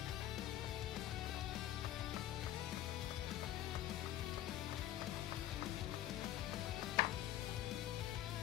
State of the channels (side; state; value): right; quieter; 12.8 dB